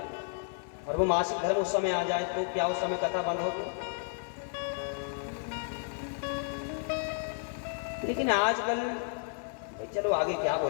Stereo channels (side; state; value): right; silent; 56 dB below the other